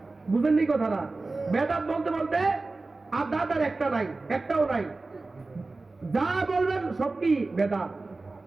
বুঝেননি কথাটা? বেদাত বলতে বলতে আর দাঁত আর একটা নাই, একটাও নাই। যা বলবেন সব কি বেদাত।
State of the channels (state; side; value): quieter; left; 3.4 dB